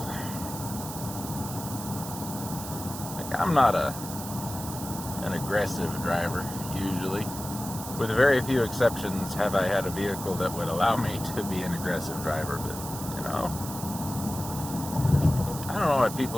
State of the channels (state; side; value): noise; right; hiss, 10 dB below the sound